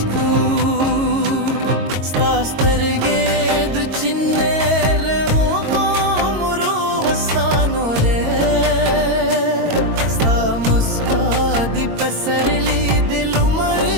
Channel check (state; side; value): late; left; 22 ms